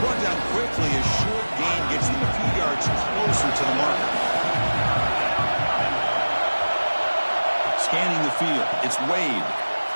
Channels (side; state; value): both; inverted; correlation -1.00